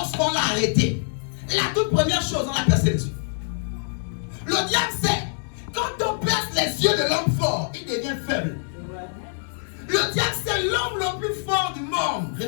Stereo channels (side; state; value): right; silent; digital silence